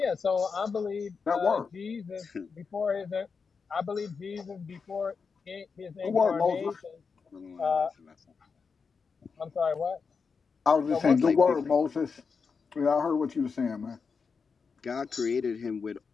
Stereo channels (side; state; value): right; quieter; 5.3 dB